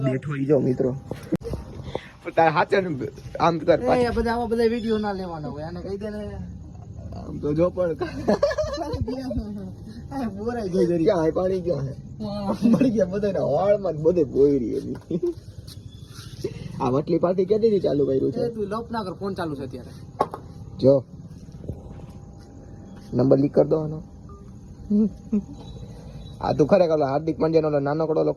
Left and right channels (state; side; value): identical; both; correlation 1.00